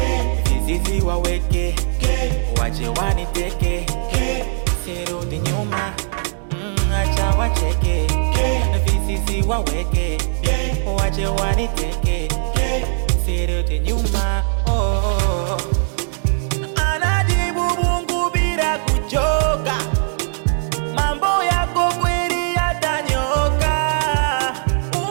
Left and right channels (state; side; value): silent; left; 66 dB below the other